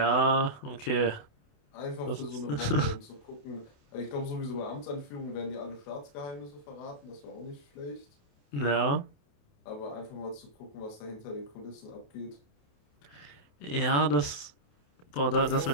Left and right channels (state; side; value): late; right; 28 ms